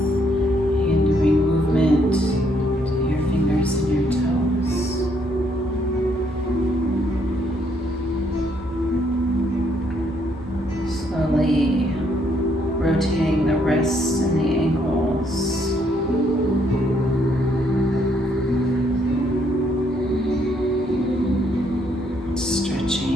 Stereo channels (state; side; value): normal; both; correlation 0.71